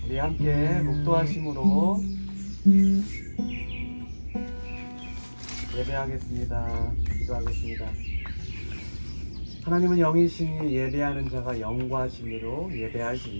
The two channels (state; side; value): inverted; both; correlation -1.00